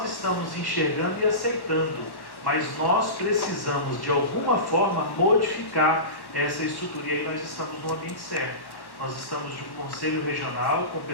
estamos enxergando e aceitando, mas nós precisamos de alguma forma modificar essa estrutura. E aí nós estamos no ambiente certo. Nós estamos de um conselho regional com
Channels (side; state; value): right; late; 1.1 ms